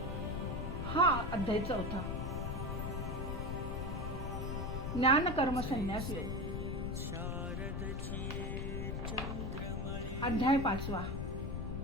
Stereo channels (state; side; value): noise; left; rumble, 3 dB below the sound